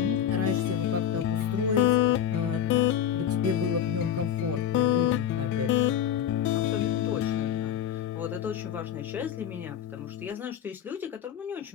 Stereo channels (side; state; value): right; quieter; 9.5 dB